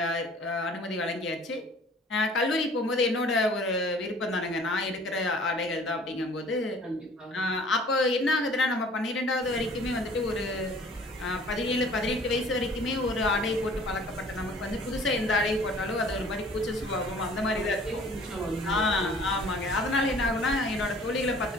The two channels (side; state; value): both; normal; correlation 0.51